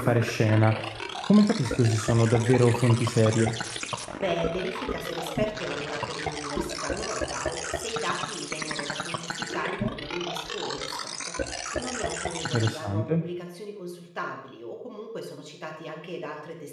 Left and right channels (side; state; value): both; identical; correlation 1.00